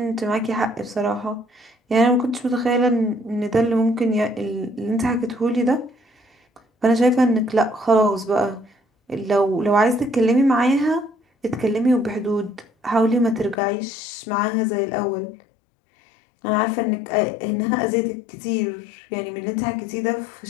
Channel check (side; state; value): right; drops out; at 13.6 s